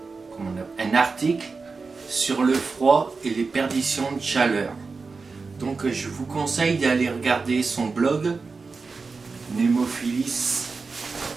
un article sur le froid et les perditions de chaleur. Donc je vous conseille d'aller regarder son blog Némophilis.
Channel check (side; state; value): left; quieter; 4.4 dB